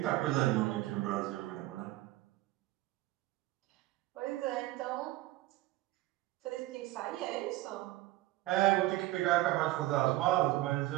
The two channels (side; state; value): left; quieter; 17.2 dB